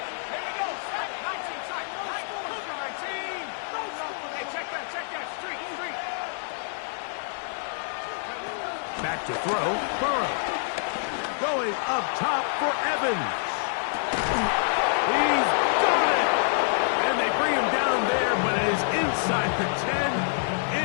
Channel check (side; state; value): right; silent; digital silence